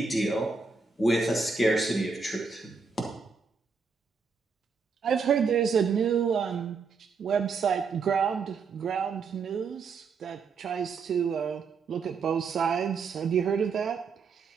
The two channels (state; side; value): quieter; left; 5.1 dB